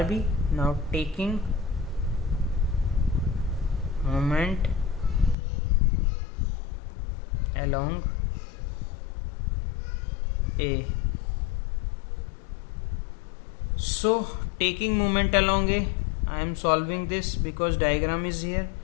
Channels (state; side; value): drops out; right; at 5.4 s